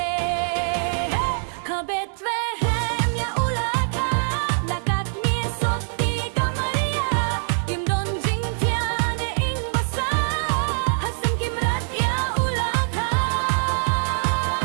Kabet vehem ya ulaka Lakat misot di kamaria Imdon jing tiane ing basa Hasam kimrat ya ulaka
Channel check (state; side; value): silent; left; digital silence